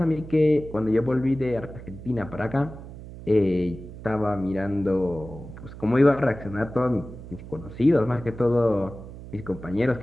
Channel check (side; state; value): right; noise; hum, 14 dB below the sound